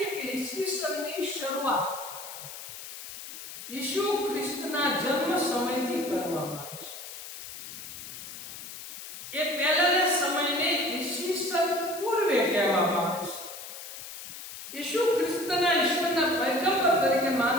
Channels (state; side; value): noise; left; hiss, 11 dB below the sound